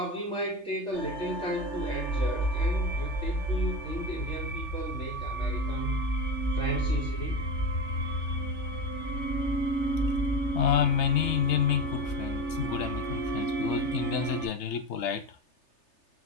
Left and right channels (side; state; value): right; late; 3.3 ms